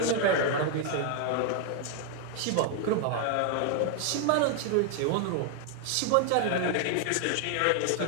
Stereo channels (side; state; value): both; different; correlation 0.00